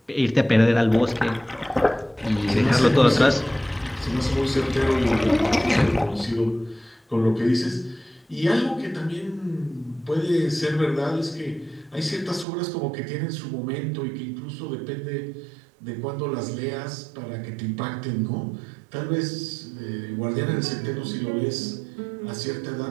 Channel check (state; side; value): drops out; left; at 12.5 s